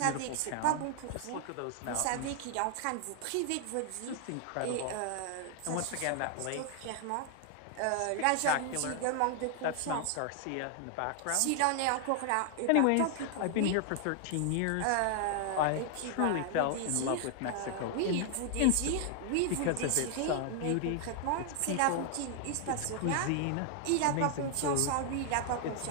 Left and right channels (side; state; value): both; different; correlation 0.00